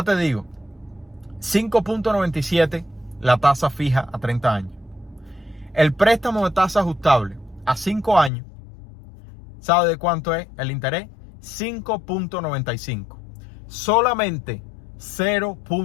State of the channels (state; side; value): drops out; right; at 8.3 s